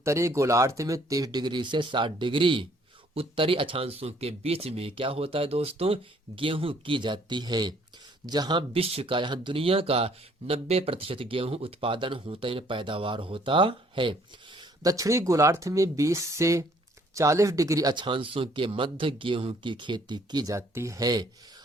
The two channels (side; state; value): both; normal; correlation 0.62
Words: गोलार्ध में 30 डिग्री से 60 डिग्री उत्तरी अक्षांशों के बीच में क्या होता है दोस्तों, गेहूं की जाती है, जहां विश्व का यहाँ दुनिया का 90% गेहूं उत्पादन होता है, पैदावार होता है। दक्षिणी गोलार्ध में 20 से 40 डिग्री अक्षांशों के मध्य गेहूं की खेती की जाती है।